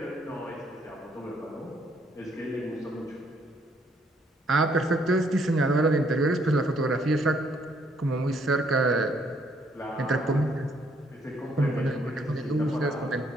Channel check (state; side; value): normal; both; correlation 0.68